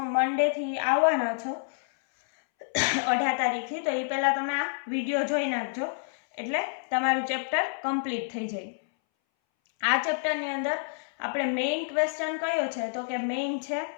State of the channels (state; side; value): silent; right; 59 dB below the other